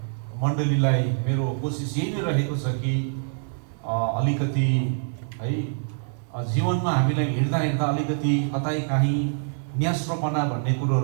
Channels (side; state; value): left; silent; 59 dB below the other